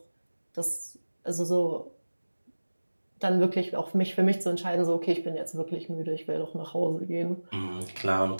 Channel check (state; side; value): inverted; both; correlation -1.00